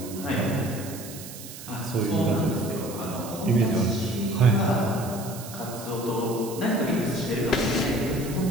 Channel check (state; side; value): noise; right; hiss, 13 dB below the sound